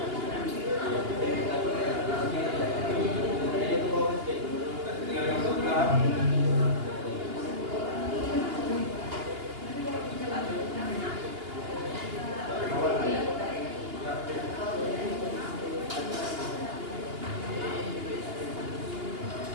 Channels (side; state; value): left; late; 2.8 ms